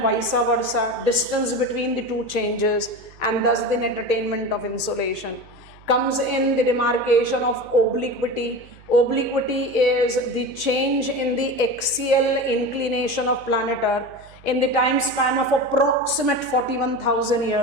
vice versa, distance between the two changes, and thus the net attainment of insolation. Comes in the demarcation of obliquity. Obliquity is the change in the axial inclination of planet Earth in the time span of approximate 41,000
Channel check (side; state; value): right; noise; hum, 24 dB below the sound